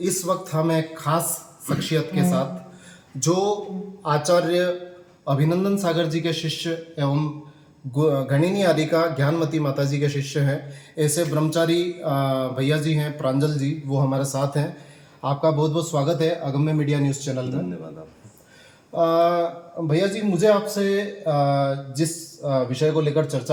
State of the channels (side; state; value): both; identical; correlation 1.00